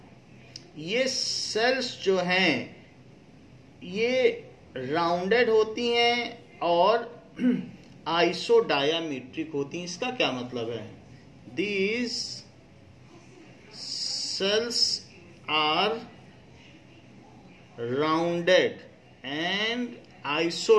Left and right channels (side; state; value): both; identical; correlation 1.00